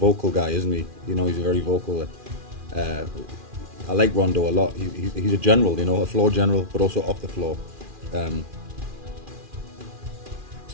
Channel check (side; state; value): left; late; 2.4 ms